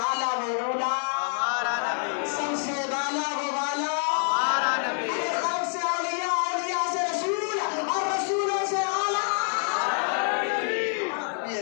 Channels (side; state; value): right; silent; 60 dB below the other